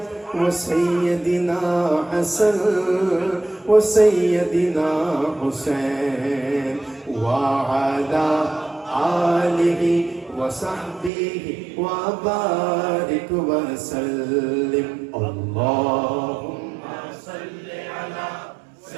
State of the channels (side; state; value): left; drops out; at 11.1 s